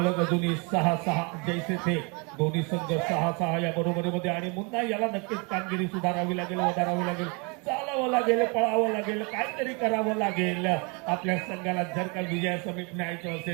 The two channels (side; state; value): left; quieter; 32.0 dB